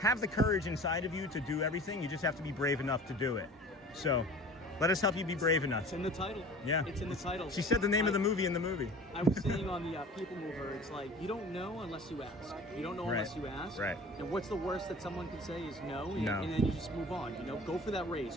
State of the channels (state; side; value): normal; both; correlation 0.42